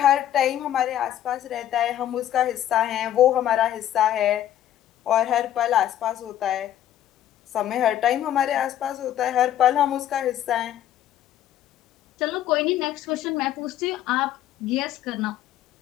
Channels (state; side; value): quieter; right; 11.7 dB